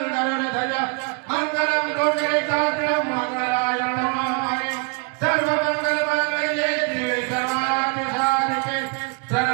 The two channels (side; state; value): left; quieter; 34.5 dB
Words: गरुड़ध्वज मंगलम कोटिकाग्रम मंगलाय नमामि सर्वमंगल मांगल्ये शिवे सर्वार्थ साधिके